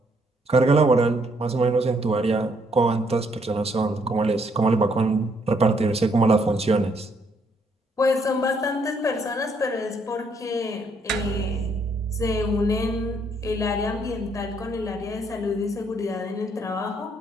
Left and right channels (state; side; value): normal; both; correlation 0.70